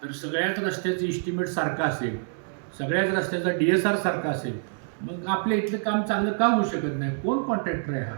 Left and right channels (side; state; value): left; silent; digital silence